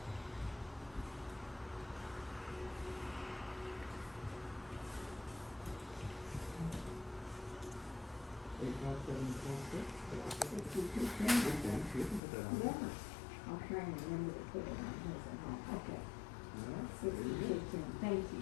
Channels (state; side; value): drops out; right; at 12.2 s